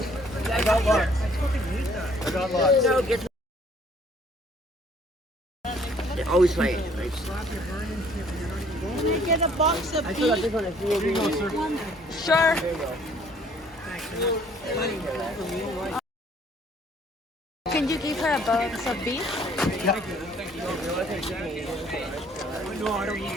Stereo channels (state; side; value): normal; both; correlation 0.59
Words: I got lots. I got lots. No, get. They're always playing. Right? Can I get a box of I still got beef? this one. Here you go, Sure. Can you give her a box of beef? No, I don't need